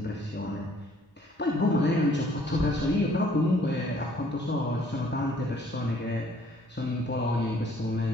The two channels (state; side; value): normal; both; correlation 0.60